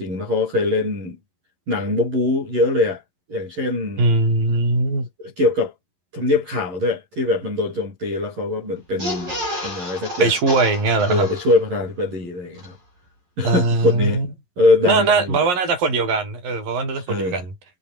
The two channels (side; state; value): left; late; 11 ms